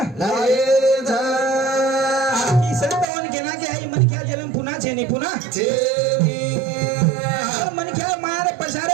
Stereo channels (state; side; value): drops out; left; at 3.1 s